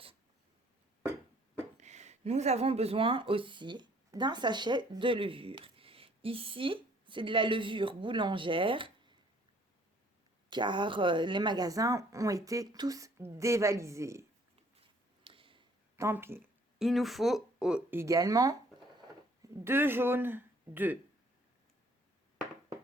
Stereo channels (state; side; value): normal; both; correlation 0.60